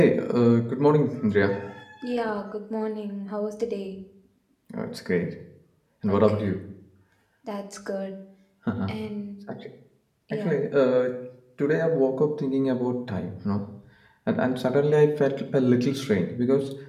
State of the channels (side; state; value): both; identical; correlation 1.00